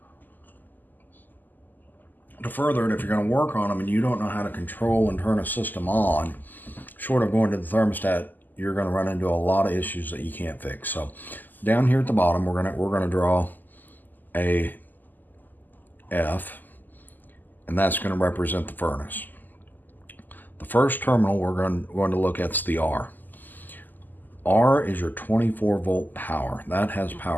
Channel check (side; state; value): right; late; 0.086 ms